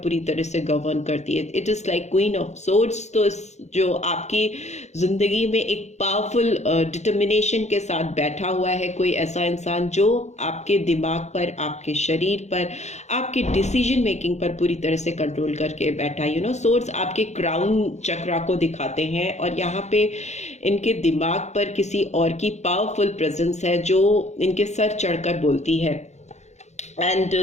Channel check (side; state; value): right; late; 0.33 ms